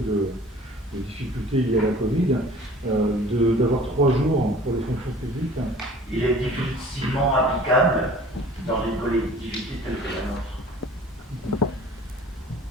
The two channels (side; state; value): both; normal; correlation 0.47